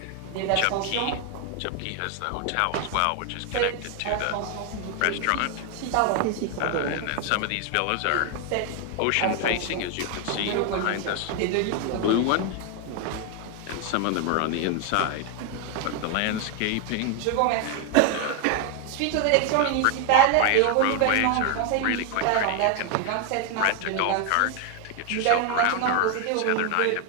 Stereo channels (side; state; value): both; different; correlation 0.01